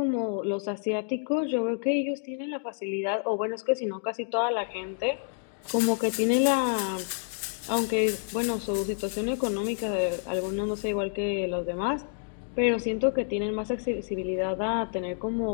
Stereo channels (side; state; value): right; silent; digital silence